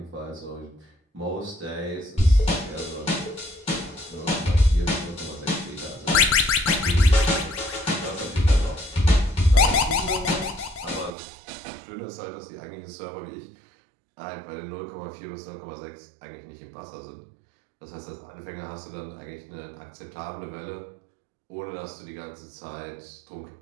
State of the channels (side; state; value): left; drops out; at 11.1 s